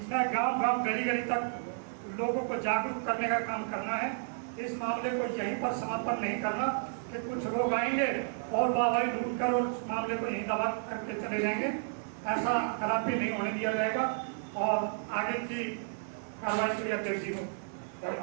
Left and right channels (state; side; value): silent; left; digital silence